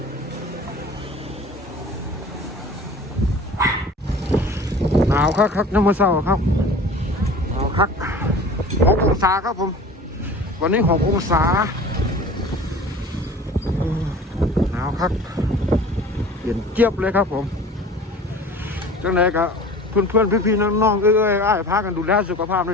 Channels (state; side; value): normal; both; correlation 0.42